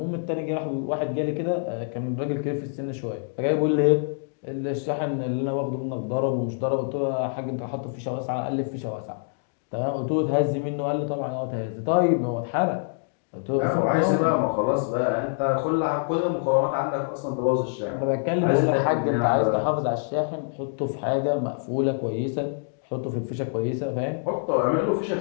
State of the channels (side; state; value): right; silent; digital silence